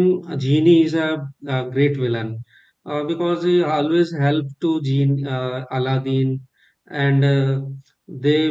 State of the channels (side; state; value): both; identical; correlation 1.00